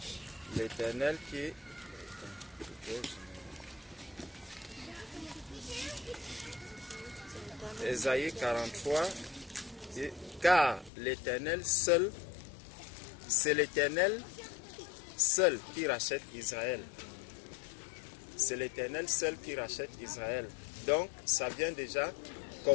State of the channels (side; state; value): right; drops out; at 10.9 s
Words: l'Éternel qui... Ésaïe 43, dit, car l'Éternel seul, c'est l'Éternel seul qui rachète Israël. C'est l'Éternel seul qui rachète Israël. Donc, ça vient déjà